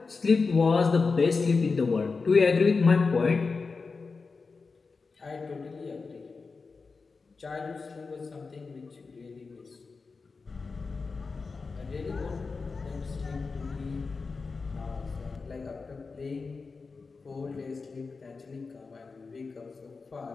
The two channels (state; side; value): quieter; right; 4.4 dB